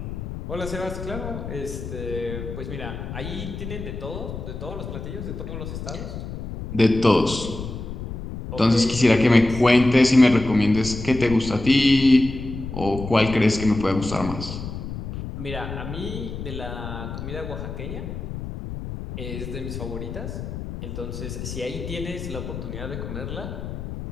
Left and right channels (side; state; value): left; noise; rumble, 8 dB below the sound